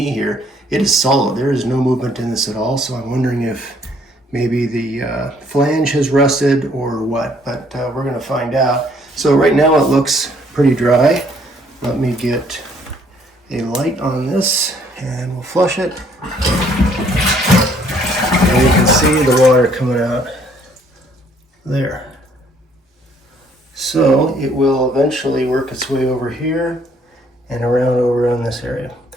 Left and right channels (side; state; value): both; normal; correlation 0.64